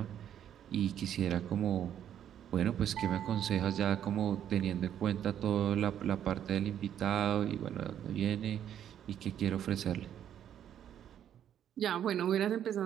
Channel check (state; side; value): quieter; left; 10.0 dB